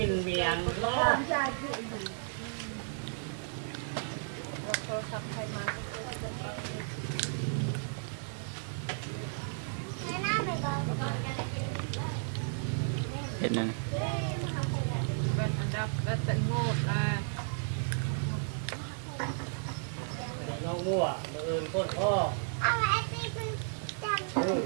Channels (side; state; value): left; silent; digital silence